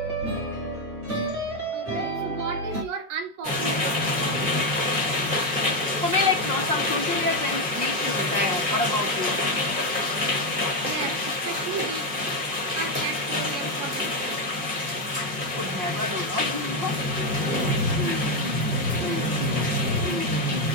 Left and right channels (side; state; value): left; late; 5.5 ms